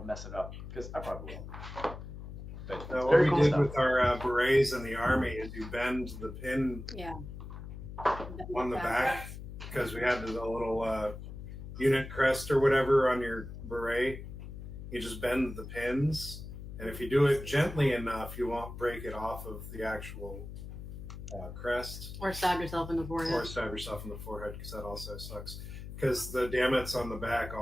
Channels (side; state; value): left; noise; hum, 10 dB below the sound